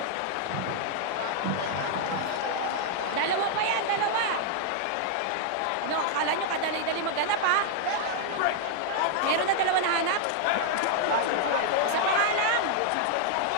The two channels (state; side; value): different; both; correlation -0.01